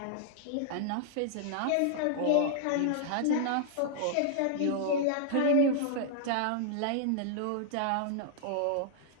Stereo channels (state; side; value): different; both; correlation -0.01